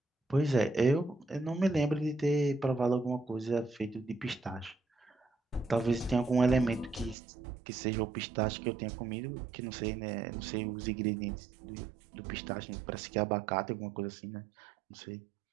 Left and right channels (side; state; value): left; drops out; at 7.2 s